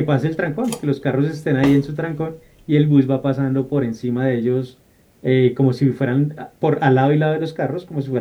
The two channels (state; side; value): identical; both; correlation 1.00